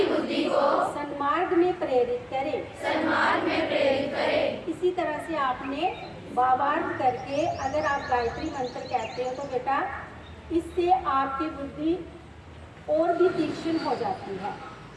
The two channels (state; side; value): identical; both; correlation 1.00